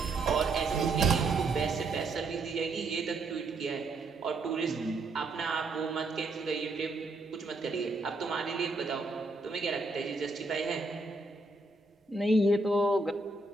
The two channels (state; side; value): quieter; left; 3.2 dB